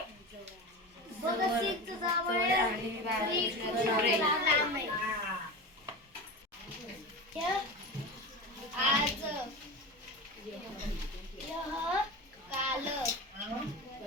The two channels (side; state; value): both; normal; correlation 0.27